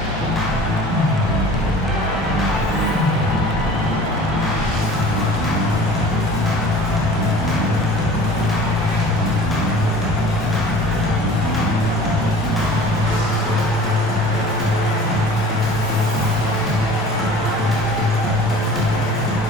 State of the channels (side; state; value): both; normal; correlation 0.44